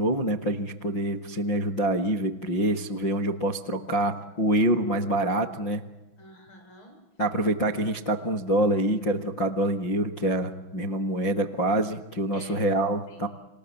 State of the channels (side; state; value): right; late; 6.0 ms